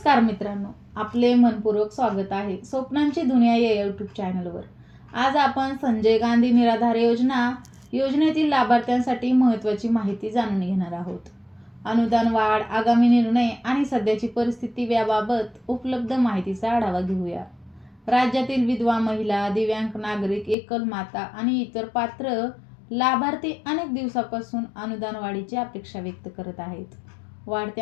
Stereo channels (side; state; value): right; drops out; at 20.6 s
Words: मित्रांनो, आपले मनपूर्वक स्वागत आहे स्वप्नांची दुनिया या यूट्यूब चॅनलवर. आज आपण संजय गांधी निराधार योजनेतील लाभार्थ्यांसाठी महत्त्वाची माहिती जाणून घेणार आहोत. अनुदान वाढ, आगामी निर्णय आणि सध्याची परिस्थिती याबाबत उपलब्ध माहितीचा आढावा घेऊया. राज्यातील विधवा महिला, दिव्यांग नागरिक, एकल माता आणि इतर पात्र लाभार्थी अनेक दिवसापासून अनुदान वाढीची अपेक्षा व्यक्त करत आहेत.